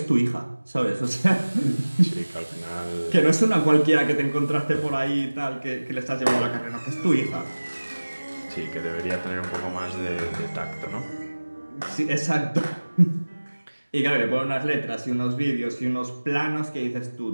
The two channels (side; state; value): both; inverted; correlation -1.00